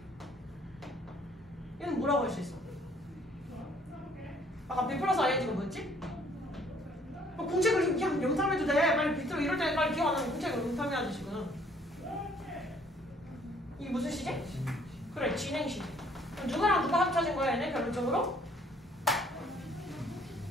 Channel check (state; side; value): normal; both; correlation 0.61